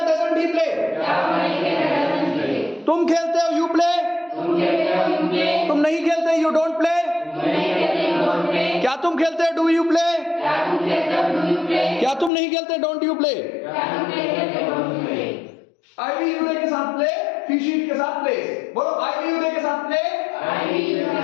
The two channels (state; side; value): drops out; right; at 12.3 s